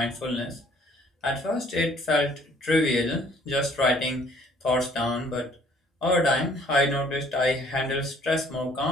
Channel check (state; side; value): normal; both; correlation 0.59